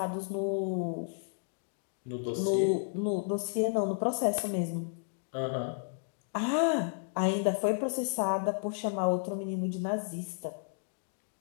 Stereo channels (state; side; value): silent; right; digital silence